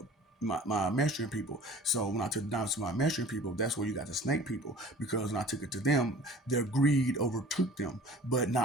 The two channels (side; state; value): both; normal; correlation 0.46